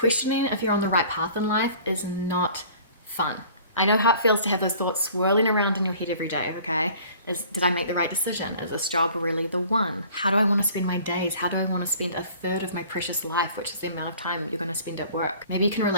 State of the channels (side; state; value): both; inverted; correlation -0.49